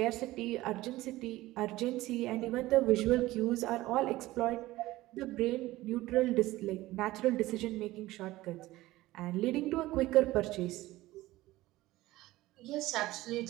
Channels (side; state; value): left; quieter; 17.5 dB